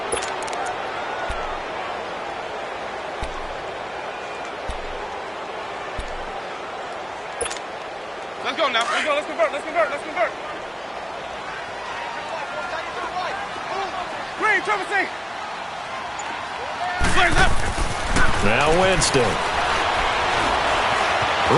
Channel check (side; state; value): both; identical; correlation 1.00